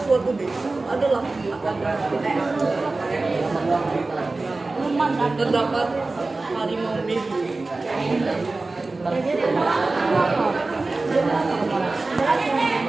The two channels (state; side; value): quieter; left; 3.4 dB